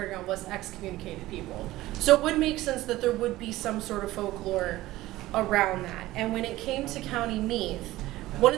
ground was excommunicated people. So it would make sense that there would be some sort of folklore around that. And when it came to County Meath, one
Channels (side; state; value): left; quieter; 16.9 dB